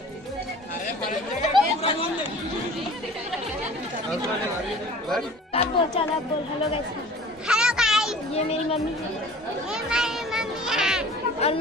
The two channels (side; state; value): both; normal; correlation 0.44